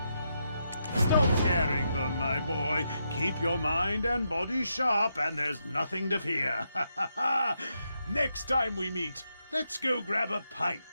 Stop scaring them, my boy. Keep your mind and body sharp, and there's nothing to fear. Next time we meet, let's go grab a pint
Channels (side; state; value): both; inverted; correlation -0.82